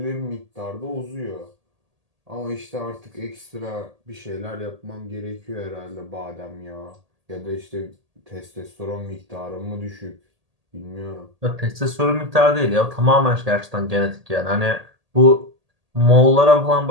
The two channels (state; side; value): late; left; 1.8 ms